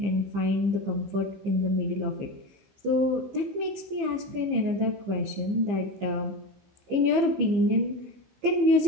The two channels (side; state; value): left; late; 15 ms